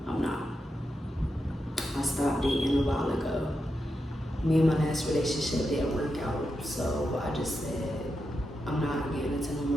I'm not. I stopped dating a while ago. Me and my last relationship didn't work out, so I just said, I'm not getting into no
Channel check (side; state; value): both; normal; correlation 0.87